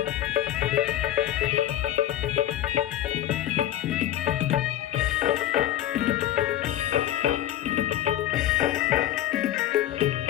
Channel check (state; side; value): quieter; right; 12.9 dB